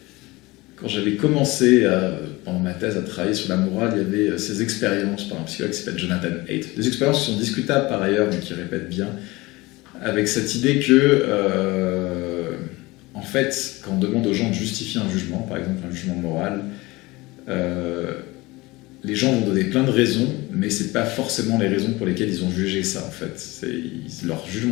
commencé pendant ma thèse à travailler sur la morale, il y avait ces expériences par un psychologue qui s'appelle Jonathan Haidt. Des expériences qui sont discutables par ailleurs, mais qui répètent bien, avec cette idée que, en fait, quand on demande aux gens de justifier un jugement, par exemple un jugement moral, les gens vont donner plein de raisons, mais c'est pas forcément les raisons pour lesquelles ils ont jugé ça, en fait. Leur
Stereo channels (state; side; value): quieter; right; 21.7 dB